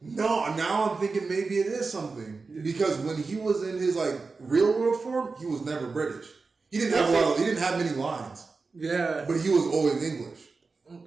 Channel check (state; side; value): quieter; left; 4.2 dB